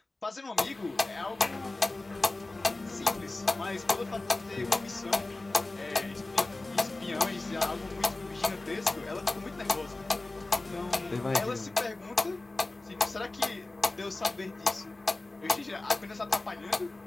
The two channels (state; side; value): quieter; right; 3.1 dB